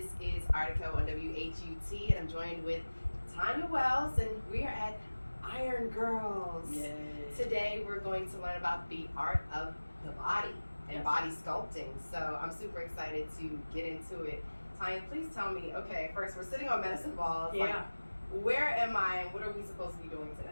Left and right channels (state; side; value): inverted; both; correlation -1.00